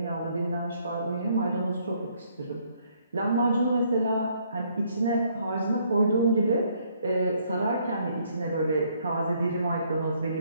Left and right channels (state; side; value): inverted; both; correlation -0.67